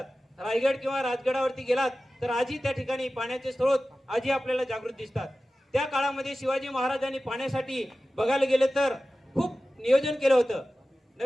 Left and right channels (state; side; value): normal; both; correlation 0.95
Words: रायगड किंवा राजगडावरती गेलात तर आजही त्या ठिकाणी पाण्याचे स्रोत आजही आपल्याला जागृत दिसतात. त्या काळामध्ये शिवाजी महाराजांनी पाण्यासाठी बघायला गेलं तर खूप नियोजन केलं होतं.